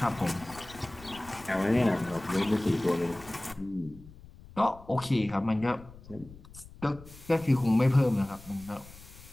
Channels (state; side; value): noise; left; rumble, 19 dB below the sound